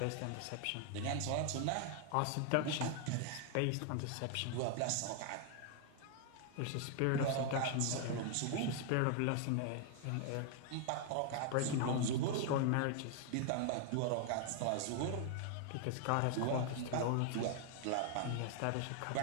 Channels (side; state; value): both; different; correlation 0.00